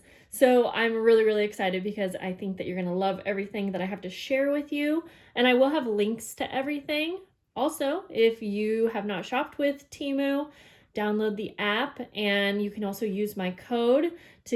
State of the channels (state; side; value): identical; both; correlation 1.00